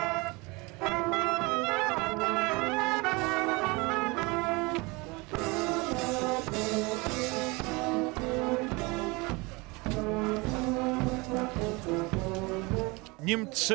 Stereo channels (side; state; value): left; quieter; 25.7 dB